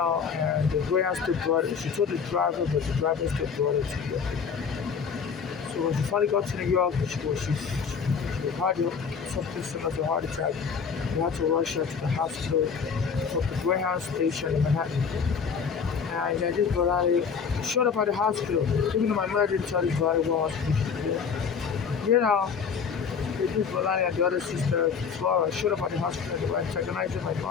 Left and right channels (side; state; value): right; quieter; 6.3 dB